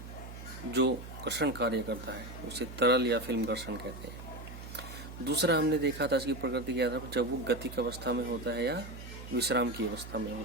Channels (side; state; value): right; noise; hum, 12 dB below the sound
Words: जो घर्षण कार्य करता है उसे तरल या फिल्म घर्षण कहते हैं। दूसरा हमने देखा था इसकी प्रकृति के आधार पर जब वो गतिक अवस्था में होता है या विश्राम की अवस्था में